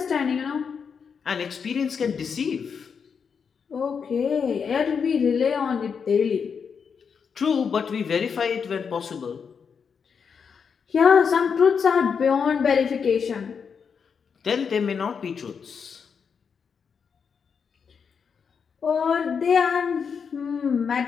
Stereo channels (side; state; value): right; quieter; 6.3 dB